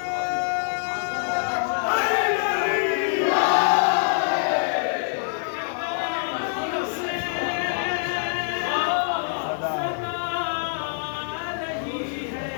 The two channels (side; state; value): right; silent; 61 dB below the other